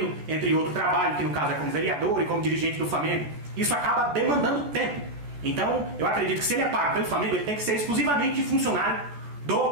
entre outro trabalho, que no caso é como vereador e como dirigente do Flamengo. Isso acaba demandando tempo. Então, eu acredito que se ele é pago pelo Flamengo, ele tem que ser exclusivamente funcionário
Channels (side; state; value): left; late; 14 ms